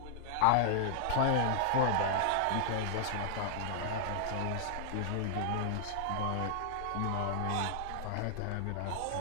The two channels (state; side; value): different; both; correlation -0.01